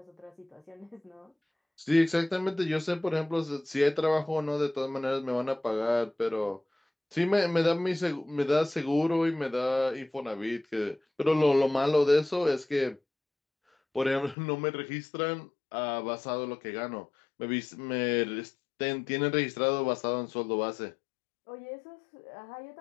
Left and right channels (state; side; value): drops out; right; at 14.4 s